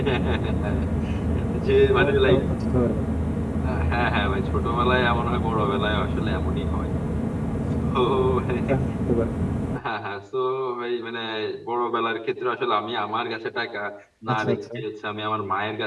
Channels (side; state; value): both; identical; correlation 1.00